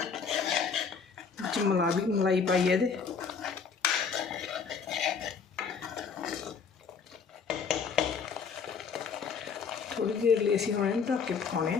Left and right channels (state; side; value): quieter; right; 5.9 dB